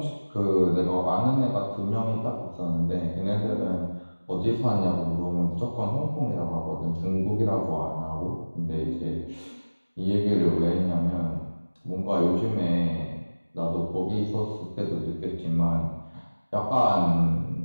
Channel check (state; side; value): inverted; both; correlation -1.00